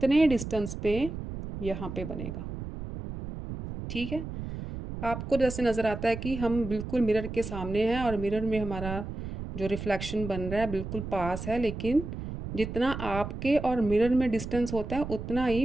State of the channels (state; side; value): noise; right; rumble, 8 dB below the sound